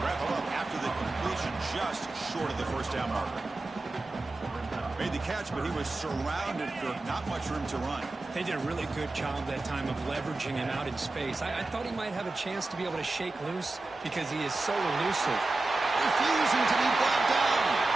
him up after the completion, just short of the first down marker. Made the catch, but he was surrounded for not much room to run. They did a really good job that time of leveraging him out in space. I thought he might have a chance to be able to shake loose because he is so elusive. Refusing to be brought down.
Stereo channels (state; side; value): quieter; left; 3.2 dB